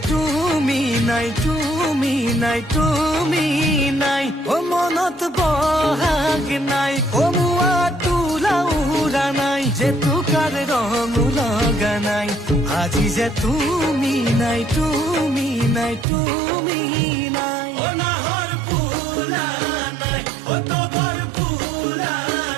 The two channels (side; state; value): left; drops out; at 16.1 s